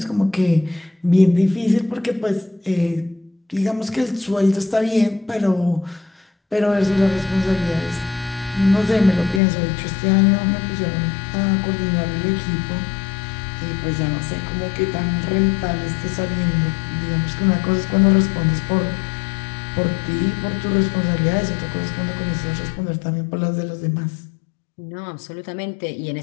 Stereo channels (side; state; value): right; drops out; at 9.4 s